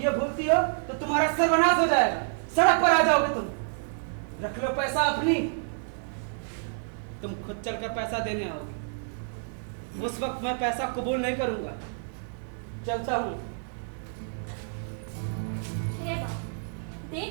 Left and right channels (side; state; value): left; silent; digital silence